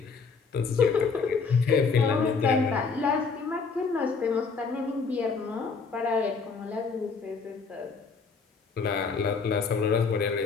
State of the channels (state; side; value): quieter; right; 5.0 dB